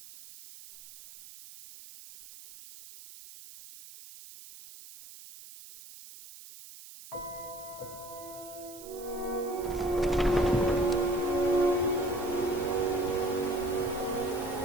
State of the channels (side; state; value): right; noise; hiss, 17 dB below the sound